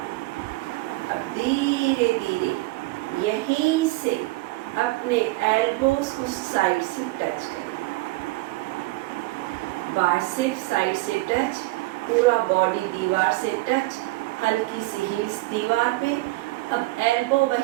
अब धीरे धीरे यहीं से अपने एल्बोज को साइड से टच करें, बाइसेप साइड से टच, पूरा बॉडी दीवार से टच, हल्की सी हील्स दीवार पे। अब एल्बो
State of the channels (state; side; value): quieter; left; 20.9 dB